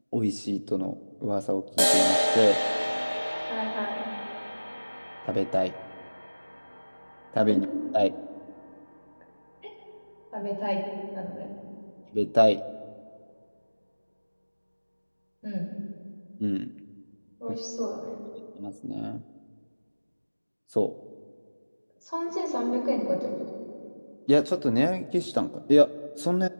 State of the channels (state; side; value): inverted; both; correlation -1.00